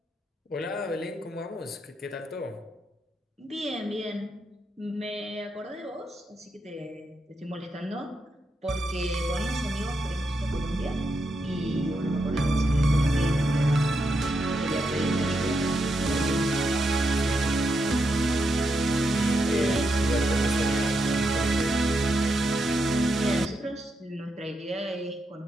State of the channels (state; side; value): normal; both; correlation 0.83